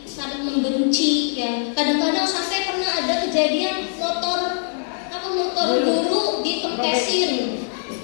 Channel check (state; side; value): silent; right; 64 dB below the other